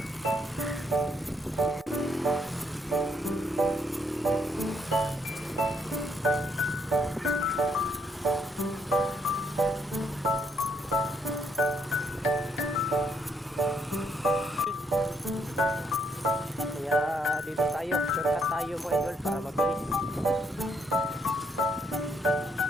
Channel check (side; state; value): both; normal; correlation 0.73